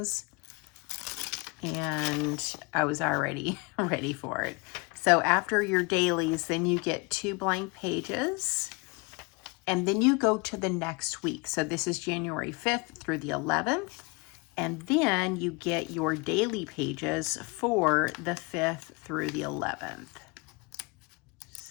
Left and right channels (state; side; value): quieter; right; 28.5 dB